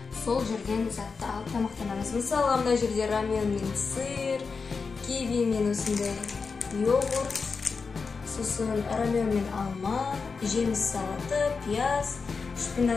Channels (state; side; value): quieter; right; 4.9 dB